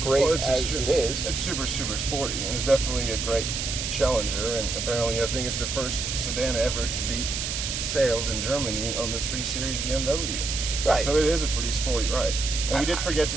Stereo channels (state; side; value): noise; right; hiss, 3 dB below the sound